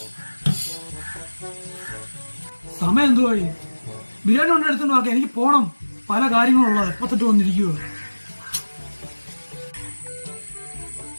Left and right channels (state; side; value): inverted; both; correlation -1.00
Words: സമയം എന്തുവായി? ബിരിയാണി കൊണ്ട് എടുത്തോണ്ട് നോക്കാം. എനിക്ക് പോണം, പല കാര്യങ്ങളുള്ളത്. എപ്പോ തൊട്ട് വന്നിരിക്കുവോ?